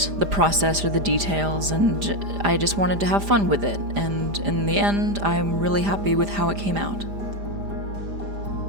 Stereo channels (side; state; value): left; late; 5.0 ms